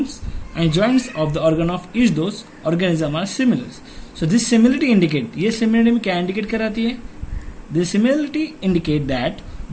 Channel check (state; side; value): identical; both; correlation 1.00